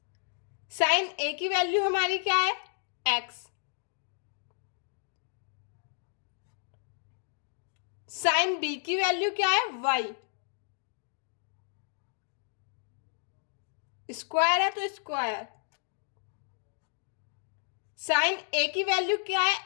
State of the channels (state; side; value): silent; right; digital silence